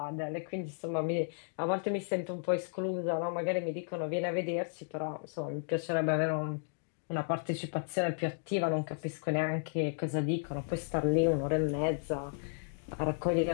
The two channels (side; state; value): right; silent; digital silence